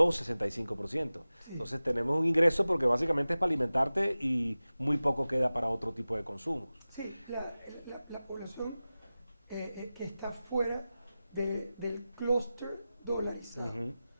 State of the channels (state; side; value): inverted; both; correlation -0.96